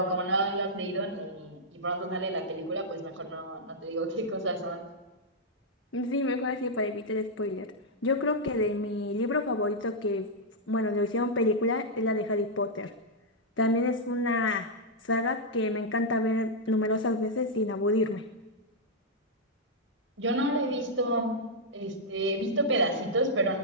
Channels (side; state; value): both; normal; correlation -0.05